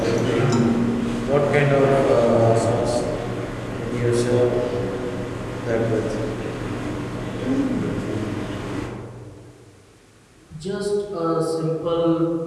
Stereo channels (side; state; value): both; identical; correlation 1.00